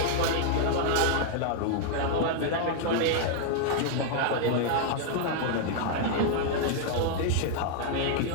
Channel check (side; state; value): both; different; correlation -0.01